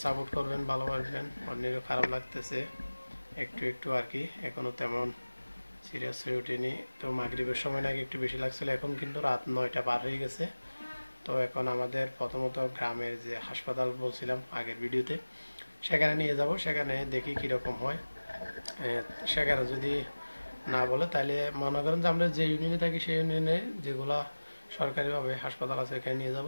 সাপোর্ট করবেন, ভালোবাসবেন। অন্যেরও খারাপ লাগতেছে একটু একটু আর কি, এখনও তেমন সিরিয়াস হয়ে ওঠেনি। তো মাগরিবের সময় নাকি একটু বেশি লাগছিল, এখন কিন্তু রাত 9টা পার হয়ে গেছে। তো এখন আমাদের প্রথমত গ্রামের যে হাসপাতাল বলছিলাম আগের ভিডিওতে, সেখানে নিয়ে যাব, সেখানে দেখি কীরকম হয়। সেখানে যদি না বলে তাহলে মনে করেন যে আমরা যে ইউনিয়নে থাকি সেই ইউনিয়নে যেগুলো সরকারিভাবে হাসপাতাল আছে এখানে নিয়ে যাব।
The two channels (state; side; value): inverted; both; correlation -1.00